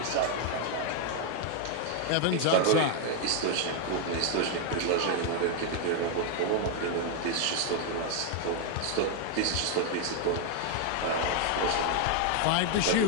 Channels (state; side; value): different; both; correlation 0.01